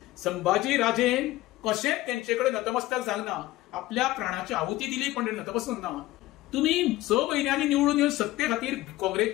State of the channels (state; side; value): quieter; right; 17.2 dB